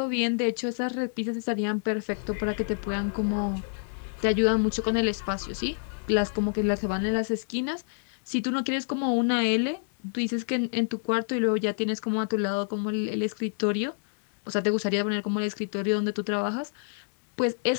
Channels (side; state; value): right; silent; digital silence